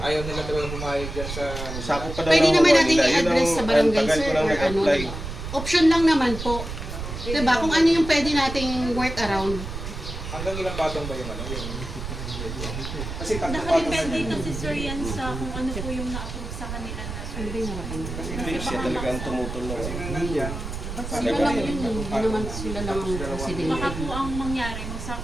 ayaw nila talaga pumayag dyan sa... Sakop pa daw Pwede ng naman huwa natin nila. Yun i-address sa ang barangay tagal sir ko lang or ano. nag-apply. Diba? Option lang naman po. Diba? Kung ano yung pwede nating work around. Hanggang ilang patong ba yung ano? Kasi tatlong patong Nakadepende kasi sir yan sa kung ano po yung na-approve sa kanila na Ano ba yung harapan nila? Hindi siya talaga ang tumutol na. Sila lang yun. Hindi naman sila lang ang baka presidente. po ang mangyari,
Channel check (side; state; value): right; noise; rumble, 7 dB below the sound